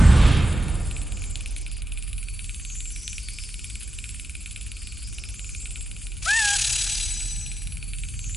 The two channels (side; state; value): both; normal; correlation 0.89